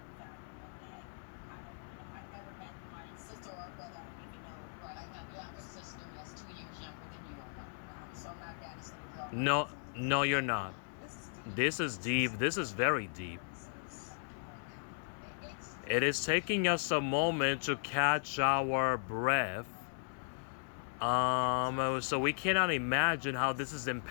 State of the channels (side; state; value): right; silent; 53 dB below the other